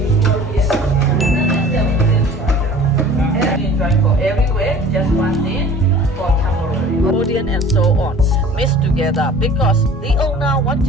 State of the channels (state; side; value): normal; both; correlation 0.46